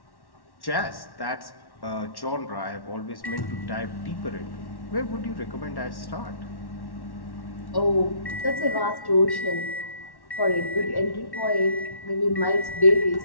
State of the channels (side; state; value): right; late; 1.1 ms